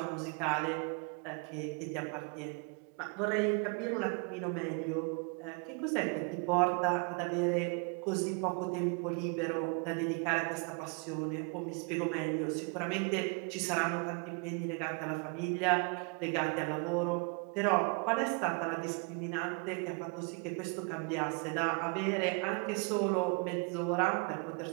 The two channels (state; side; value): quieter; left; 35.2 dB